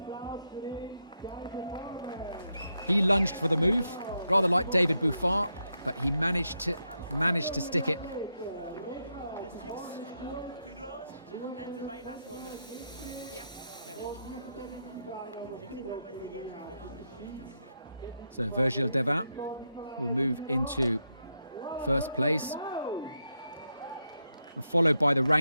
He lunged for the move, rather like David Buffard, but he managed to stick it. So Virgile Devin will move into first place. And followed by the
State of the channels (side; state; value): both; inverted; correlation -0.83